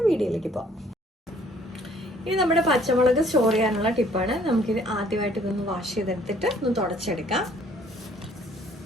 വീഡിയോയിലേക്ക് പോകാം. ഇനി നമ്മുടെ പച്ചമുളക് സ്റ്റോർ ചെയ്യാനുള്ള ടിപ്പാണ്. നമുക്കിത് ആദ്യമായിട്ട് ഇതൊന്ന് വാഷ് ചെയ്തെടുത്തിട്ട് ഒന്ന് തുടച്ചെടുക്കാം.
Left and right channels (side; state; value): both; normal; correlation 0.59